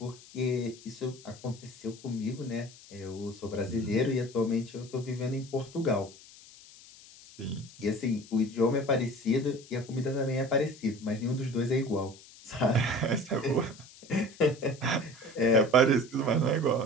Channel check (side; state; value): left; noise; hiss, 21 dB below the sound